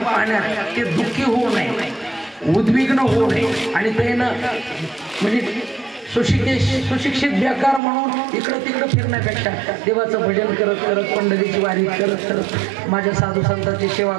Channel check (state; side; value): drops out; left; at 7.8 s